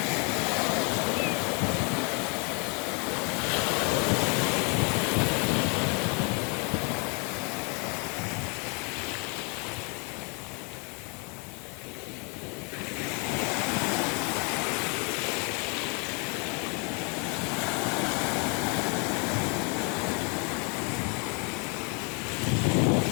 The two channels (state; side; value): quieter; right; 34.1 dB